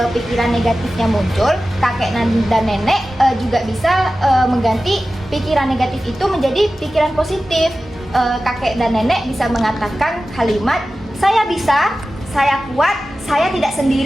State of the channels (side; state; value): both; normal; correlation 0.95